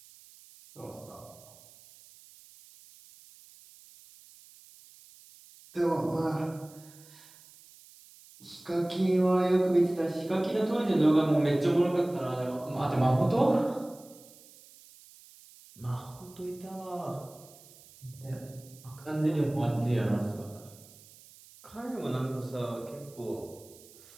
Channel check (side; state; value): right; noise; hiss, 23 dB below the sound